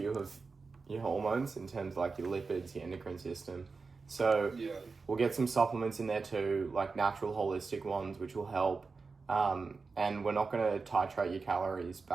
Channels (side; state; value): left; quieter; 4.4 dB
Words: of your hormones in terms of like your lipids, your endocrine system. So we'll get some supplements in there too, like natural holistic ones, which will help. And we're not going to titrate your calories